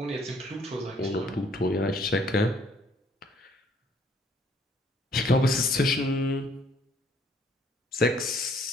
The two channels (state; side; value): normal; both; correlation 0.63